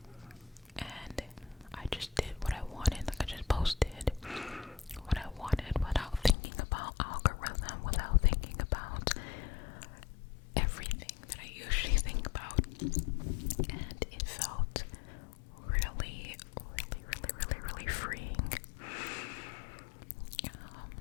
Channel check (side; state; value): right; drops out; at 6.4 s